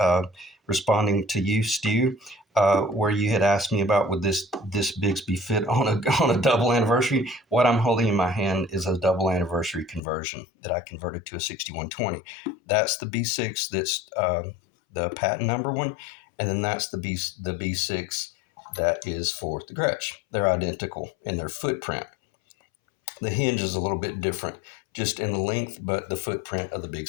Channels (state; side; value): drops out; right; at 10.0 s